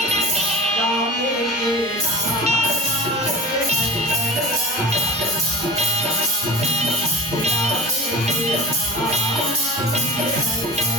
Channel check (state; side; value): normal; both; correlation 0.34